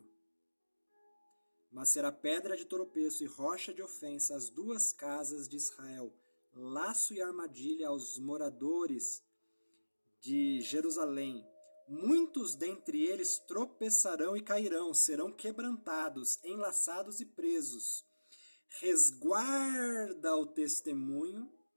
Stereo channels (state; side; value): inverted; both; correlation -1.00